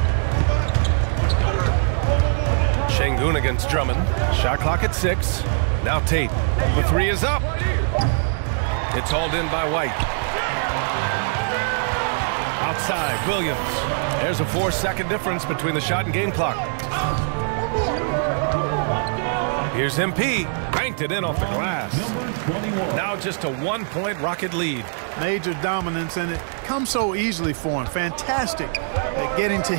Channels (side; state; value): left; silent; digital silence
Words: Şengün against Drummond. Shot clock at 6. Now Tate. The 3 is up. It's hauled in by White. Outside, Williams. There's a 4-second difference between the shot and game clock. Here's MP. Banked it in off the glass. Now just a 1-point Rocket lead. Major dominance, and it comes so easily for him. Fantastic at getting to